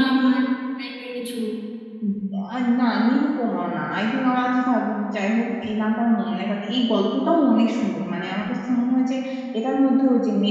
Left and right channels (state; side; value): identical; both; correlation 1.00